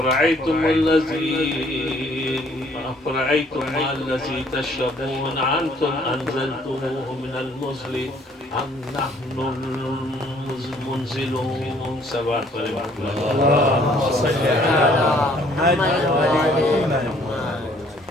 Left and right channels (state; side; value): normal; both; correlation 0.61